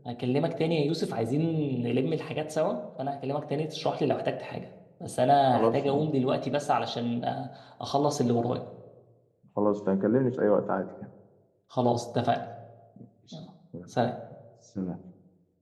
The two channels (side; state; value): both; identical; correlation 1.00